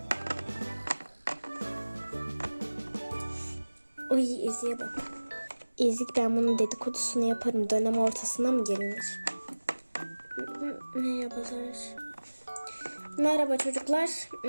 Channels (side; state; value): both; inverted; correlation -1.00